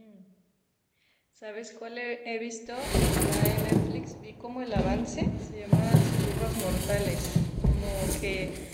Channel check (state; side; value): identical; both; correlation 1.00